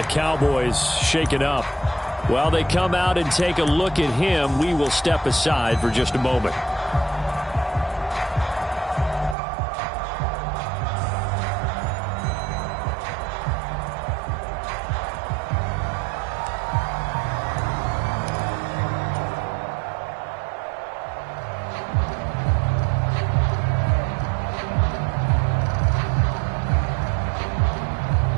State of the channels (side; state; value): left; drops out; at 9.3 s